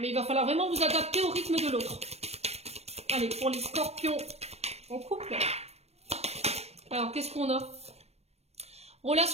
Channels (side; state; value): left; late; 0.31 ms